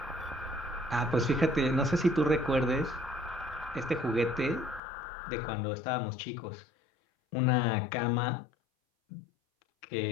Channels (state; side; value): drops out; right; at 4.8 s